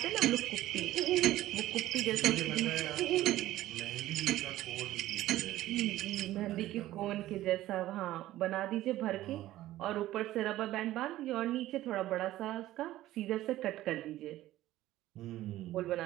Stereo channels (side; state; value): left; quieter; 15.1 dB